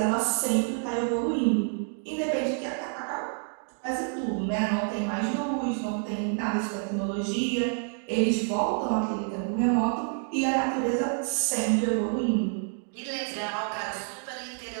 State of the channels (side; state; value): left; silent; 59 dB below the other